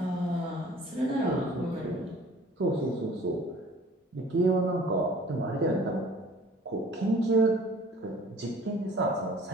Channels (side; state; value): both; normal; correlation 0.49